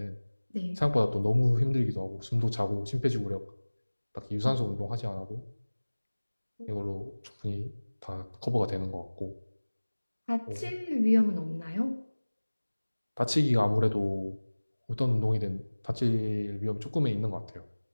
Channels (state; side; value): inverted; both; correlation -1.00